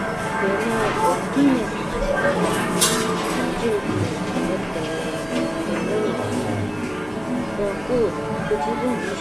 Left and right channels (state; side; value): noise; right; hum, 21 dB below the sound